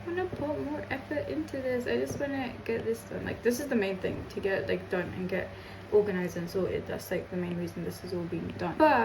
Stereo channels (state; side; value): identical; both; correlation 1.00